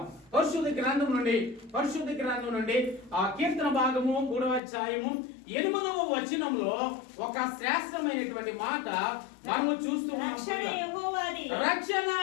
పరిశుద్ధ గ్రంథం నుండి ఆ కీర్తన భాగము 3వ అధ్యాయము 8వ వచనంలో ఒక శ్రేష్టమైనటువంటి మాట మనము చూస్తూ ఉన్నాం. రక్షణ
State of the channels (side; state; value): right; drops out; at 4.6 s